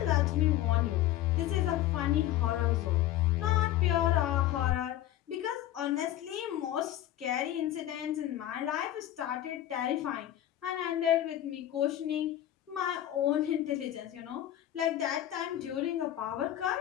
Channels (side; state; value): right; quieter; 12.9 dB